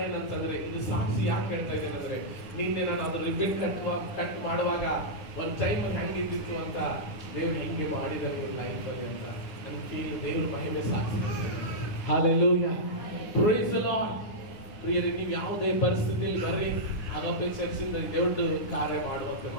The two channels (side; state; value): right; late; 9.7 ms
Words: ಏನಂತಂದ್ರೆ, ಇದು ಸಾಕ್ಷಿ ಯಾಕೆ ಹೇಳ್ತಾ ಇದ್ದೇನೆ ಅಂದ್ರೆ, ನಿನ್ನೆ ನಾನು ಅದ್ರ ರಿಬ್ಬನ್ ಕಟ್ ಮಾಡುವಾಗ ಒಂದು ಟೈಮ್ ಹೆಂಗಿದ್ದಿತ್ತು ಅಂತ ದೇವ್ರು ಹೆಂಗೆ ಮಾಡಿದ್ದಾರೆ ಲೈಫ್ ಅಲ್ಲಿ ಅಂತ ನನ್ಗೆ ಫೀಲ್. ದೇವ್ರ ಮಹಿಮೆ ಸಾಕ್ಷಿ. ಹalleluya. Praise the lord. ಪ್ರಿಯರೇ, ನೀವು ಯಾವುದೇ ಪರಿಸ್ಥಿತಿಯಲ್ಲಿ ಬರ್ರಿ, ಅಗಪೆ ಚರ್ಚಿಂದ ದೇವ್ರ ಕಾರ್ಯ ಮಾಡುವಂತೆ